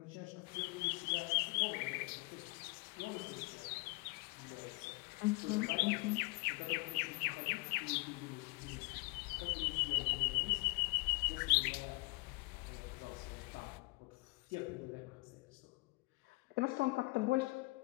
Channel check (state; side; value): quieter; right; 26.4 dB